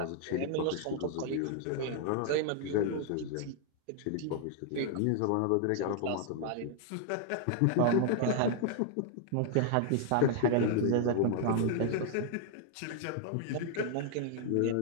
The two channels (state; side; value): different; both; correlation 0.00